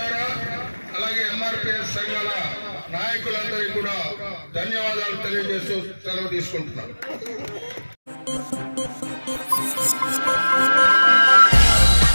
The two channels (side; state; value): both; inverted; correlation -1.00